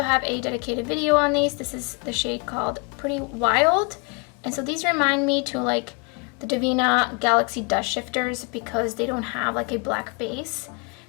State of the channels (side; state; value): right; quieter; 31.3 dB